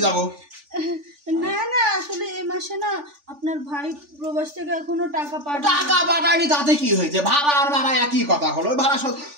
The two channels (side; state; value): left; late; 3.4 ms